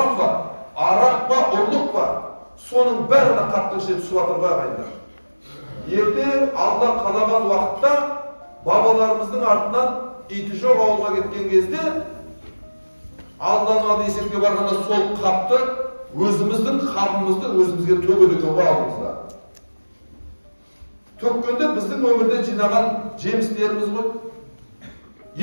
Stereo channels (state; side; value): inverted; both; correlation -1.00